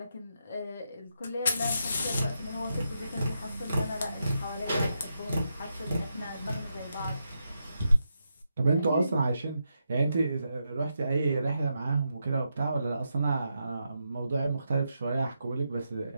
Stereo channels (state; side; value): inverted; both; correlation -0.83